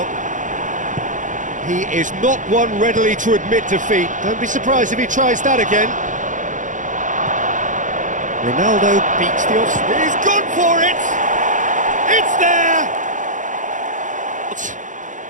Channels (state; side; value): late; left; 0.37 ms